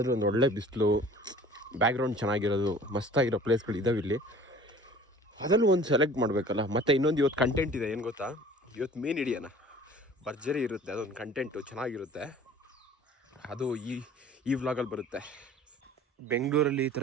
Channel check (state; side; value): normal; both; correlation 0.47